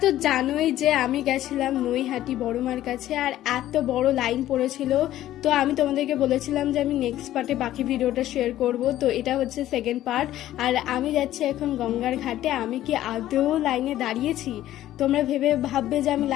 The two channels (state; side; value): quieter; right; 13.5 dB